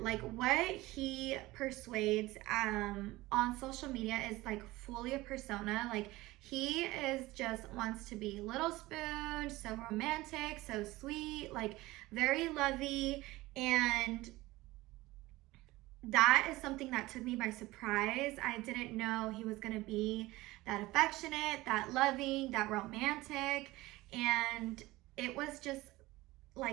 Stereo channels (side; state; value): left; quieter; 19.2 dB